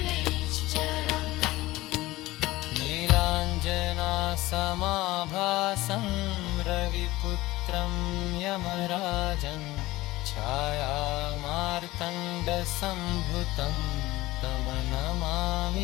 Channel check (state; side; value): quieter; right; 18.5 dB